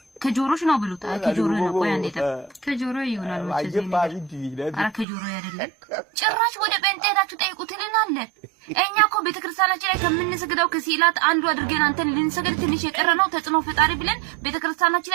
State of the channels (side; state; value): left; drops out; at 5.1 s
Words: ከጆሮሽ ነው ብሉት። ከጆሮ ነው። ቆይ አንዴ ከጆሮ ይሆናል ማለት ነው። አረ ከጆሮ አይደለም። ጭራሽ ወደ ጴንጤናችሁ ጠይቁት ልናለ። እኛ እኮ ቤተክርስቲያናችን ላይ ከምንሰግደው ከሲላት አንዱ አድርገን አንተን ልንሰግድ ትንሽ የቀረነው ተጽዕኖ ፈጣሪ ብለን ቤተክርስቲያናችን